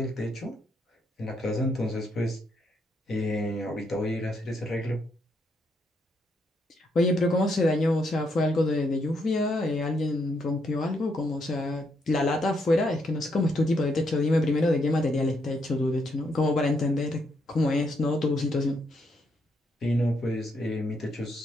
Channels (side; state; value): both; normal; correlation 0.76